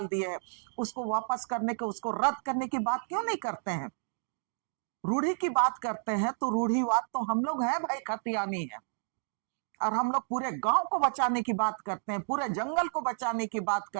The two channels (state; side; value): silent; left; digital silence